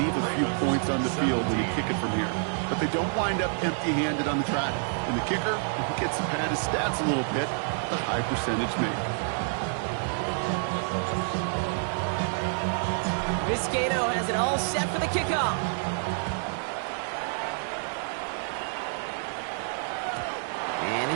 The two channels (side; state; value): left; silent; 59 dB below the other